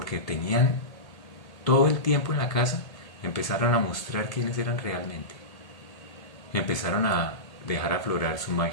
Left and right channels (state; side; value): late; right; 1.8 ms